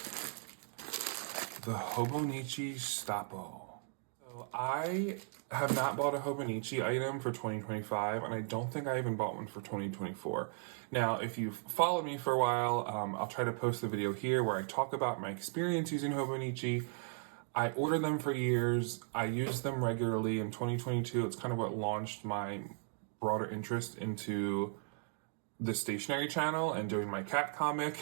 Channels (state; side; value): silent; left; 53 dB below the other